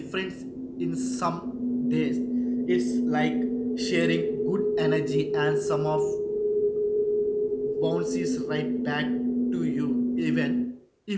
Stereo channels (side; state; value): both; identical; correlation 1.00